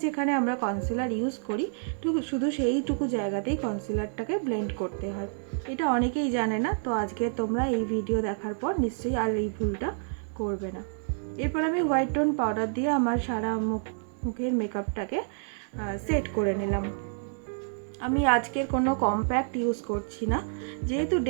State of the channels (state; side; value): silent; left; digital silence